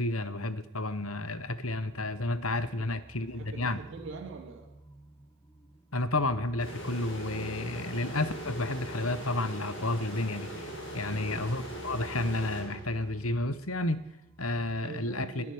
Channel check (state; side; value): normal; both; correlation 0.42